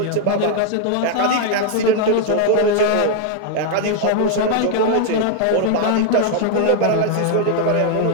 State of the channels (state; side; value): different; both; correlation 0.00